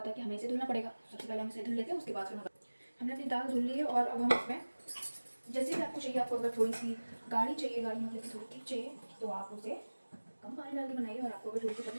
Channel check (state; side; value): inverted; both; correlation -1.00